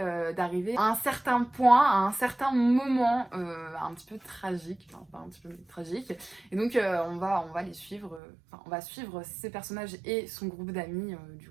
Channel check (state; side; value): drops out; left; at 8.2 s